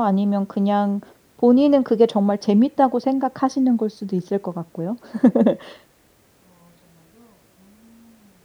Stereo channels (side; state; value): both; identical; correlation 1.00